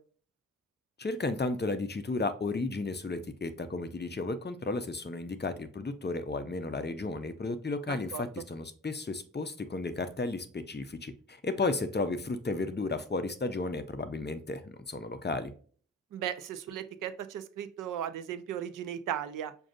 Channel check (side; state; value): both; normal; correlation 0.38